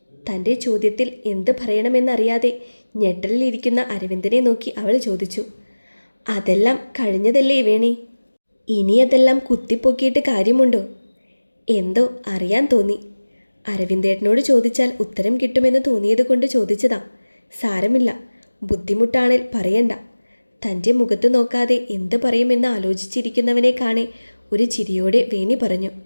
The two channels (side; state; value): both; inverted; correlation -1.00